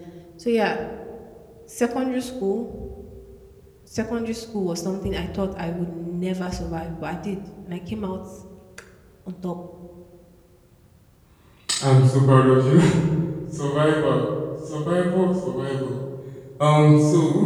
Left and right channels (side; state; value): both; identical; correlation 1.00